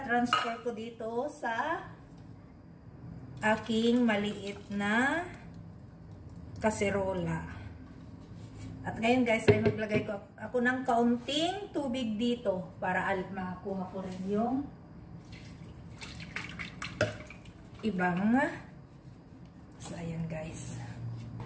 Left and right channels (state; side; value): identical; both; correlation 1.00